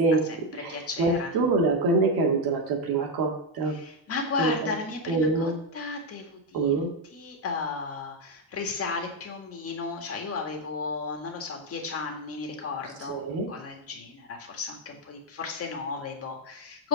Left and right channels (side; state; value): both; normal; correlation 0.06